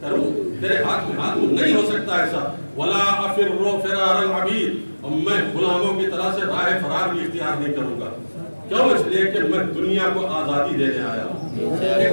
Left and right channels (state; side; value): inverted; both; correlation -1.00